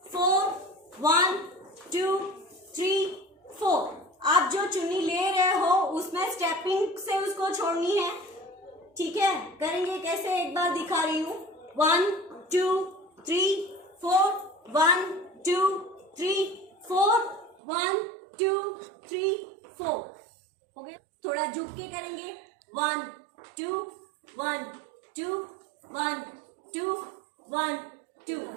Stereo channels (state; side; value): drops out; left; at 17.6 s